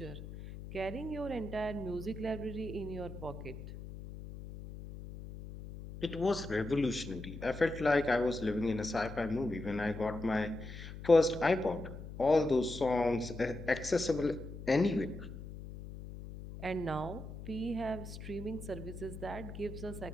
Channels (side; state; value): left; noise; hum, 11 dB below the sound